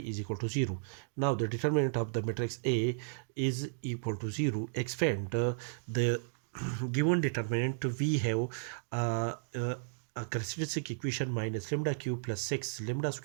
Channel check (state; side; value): silent; left; digital silence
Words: equal to 0. Now, the determinant of the matrix A is equal to 0. Expand the given determinant, we have a characteristic equation minus lambda cube plus 6 lambda